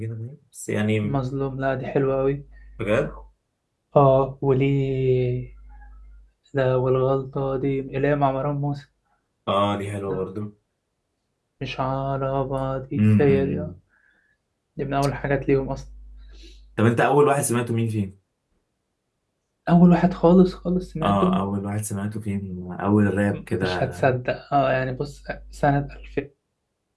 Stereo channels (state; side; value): identical; both; correlation 1.00